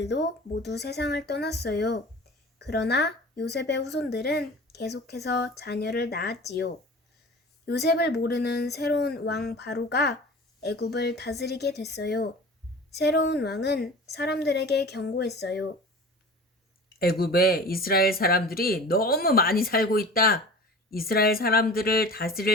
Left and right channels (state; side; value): normal; both; correlation 0.39